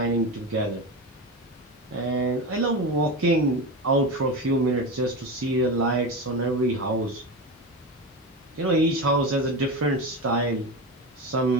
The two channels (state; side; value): normal; both; correlation 0.21